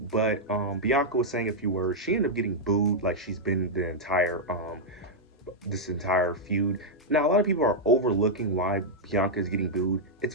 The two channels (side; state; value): both; normal; correlation -0.05